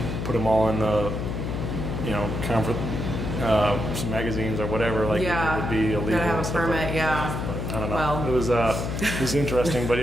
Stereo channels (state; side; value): noise; left; hum, 3 dB below the sound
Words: put them all in the, some magazines or whatever, like it would be illegal. Gotta have a permit, but, yeah. But I don't know. Well, it was interesting, but